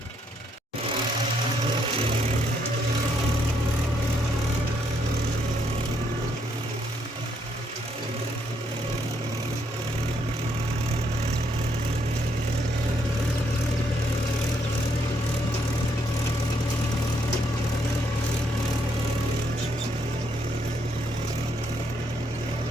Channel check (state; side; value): normal; both; correlation 0.74